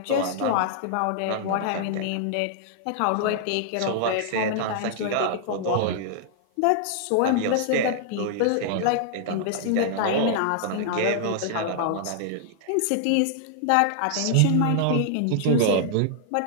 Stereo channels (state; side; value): different; both; correlation -0.01